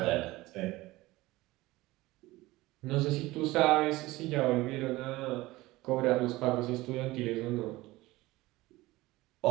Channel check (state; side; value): quieter; left; 19.1 dB